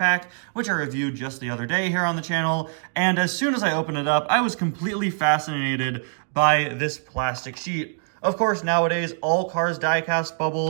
which I reviewed just the other day here on the channel, and as soon as I opened it up, I was completely fascinated by this plastic sheet. Of course, nowadays, all Cars diecast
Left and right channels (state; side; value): silent; left; digital silence